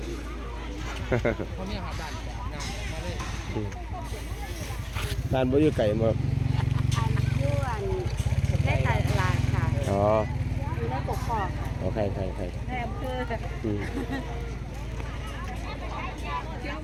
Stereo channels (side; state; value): both; identical; correlation 1.00